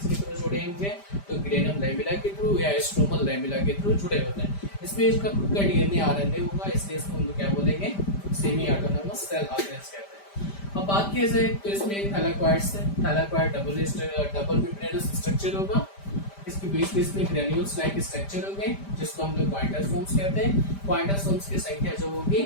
थ्रू जुड़े होंगे? तो ग्रेनम लैमेला के थ्रू या स्ट्रोमल लैमेला के थ्रू जुड़े होते हैं। इसमें इसका खुद का डीएनए आरएनए होगा, इसलिए इसको हम लोग क्या बोलेंगे? सेमी ऑटोनॉमस सेल ऑर्गेनेल्स कहते हैं। अब बात किया जाए तो इसमें थैलाकॉइड्स है। थैलाकॉइड डबल मेम्ब्रेनस स्ट्रक्चर होगा। इसके बीच में ग्रेन्यूल्स लाइक स्ट्रक्चर होंगे जिसको हम लोग क्वांटासोम्स कहते हैं। क्वांटासोम्स की संख्या जो होगी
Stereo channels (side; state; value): right; late; 5.1 ms